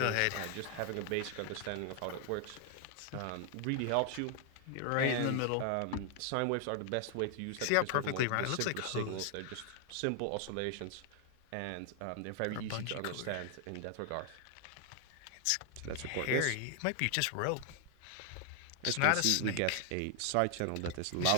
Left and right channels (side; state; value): both; different; correlation 0.00